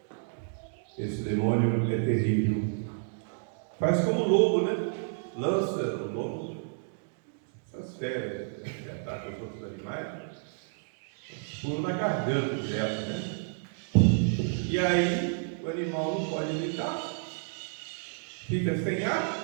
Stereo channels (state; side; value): silent; left; digital silence